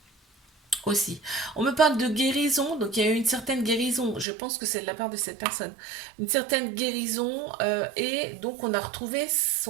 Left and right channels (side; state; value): left; drops out; at 4.2 s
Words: aussi. On me parle de guérison, donc il y a eu une certaine guérison, je pense que c'est de la part de cette personne. Une certaine guérison, et donc on a retrouvé